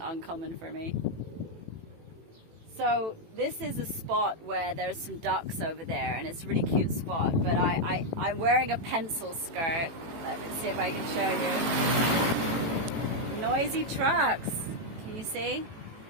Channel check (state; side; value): late; left; 18 ms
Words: uncommon for me. So this is a spot where there's some ducks over there, and it's a really cute spot, but I'm wearing a pencil skirt. Let me see if I can show you. Noisy trucks, can you see?